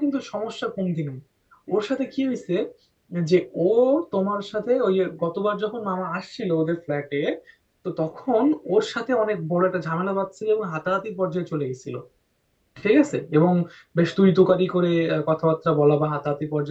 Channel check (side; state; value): both; identical; correlation 1.00